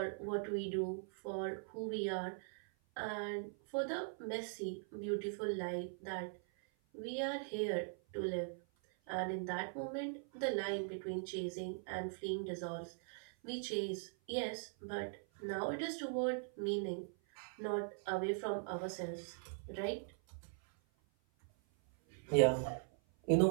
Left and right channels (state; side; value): silent; left; 50 dB below the other